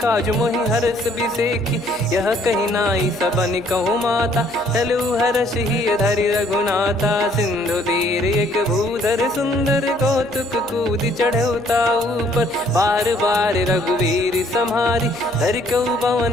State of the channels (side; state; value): left; noise; hum, 30 dB below the sound